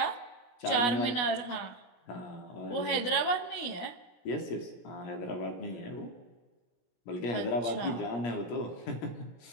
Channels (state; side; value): late; right; 16 ms